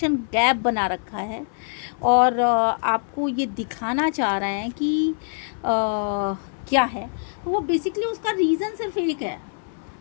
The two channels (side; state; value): right; silent; 59 dB below the other